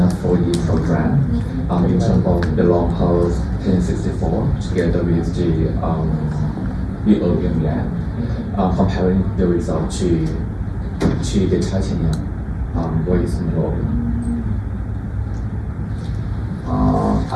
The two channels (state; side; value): identical; both; correlation 1.00